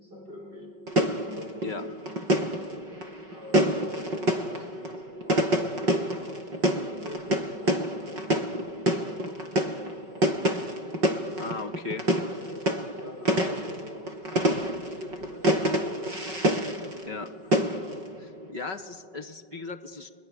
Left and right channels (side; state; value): left; late; 5.3 ms